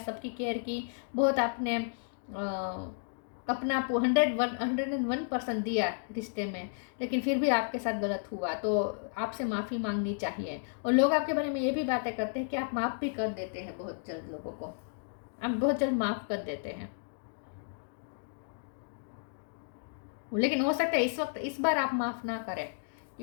केयर की, बहुत आपने अपना 101% दिया रिश्ते में, लेकिन फिर भी आपके साथ गलत हुआ। तो आपसे माफ़ी मांगनी चाहिए। और लोग आपके बारे में ये भी बातें करते हैं कि आप माफ़ भी कर देते हैं बहुत जल्द, लोगों को आप बहुत जल्द माफ़ कर देते हैं। लेकिन हो सकता है इस बार आप माफ़ ना करें,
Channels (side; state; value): right; silent; digital silence